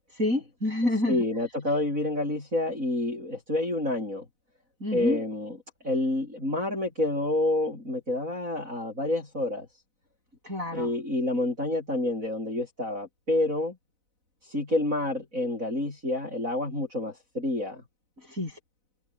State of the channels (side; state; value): left; late; 4.0 ms